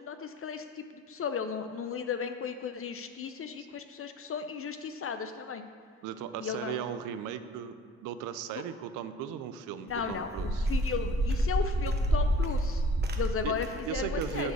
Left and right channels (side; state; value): both; normal; correlation 0.45